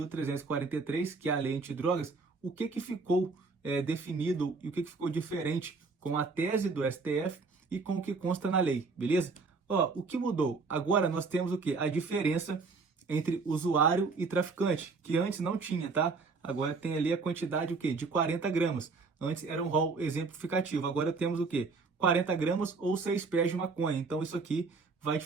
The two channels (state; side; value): quieter; left; 4.3 dB